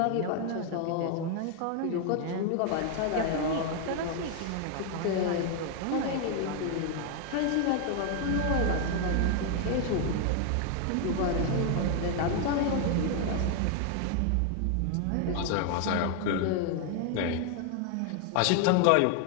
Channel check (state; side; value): different; both; correlation 0.00